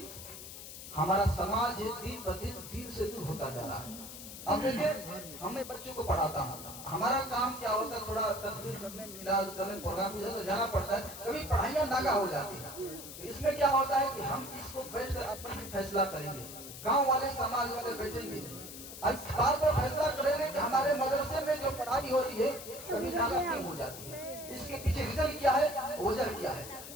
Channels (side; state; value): left; noise; hiss, 12 dB below the sound